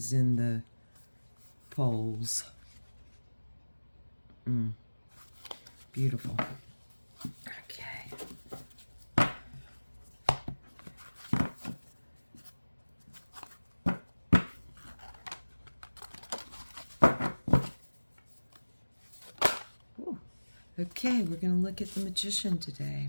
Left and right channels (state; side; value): inverted; both; correlation -1.00